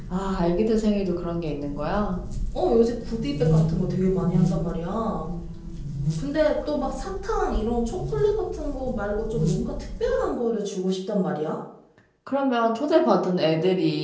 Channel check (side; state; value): both; identical; correlation 1.00